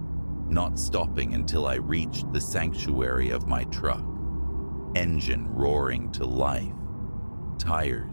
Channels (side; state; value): both; inverted; correlation -1.00